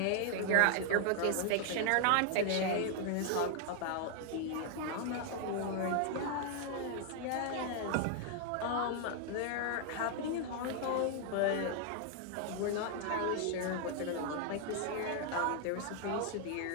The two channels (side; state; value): both; different; correlation 0.00